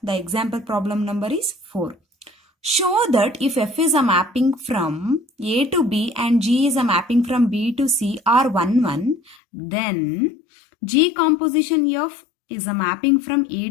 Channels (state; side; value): drops out; right; at 9.3 s